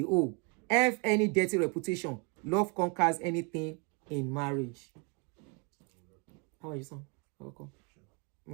oath. F any dirty reputation. Love conquers anything in marriage. How are you, son? Welcome.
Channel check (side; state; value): left; quieter; 32.6 dB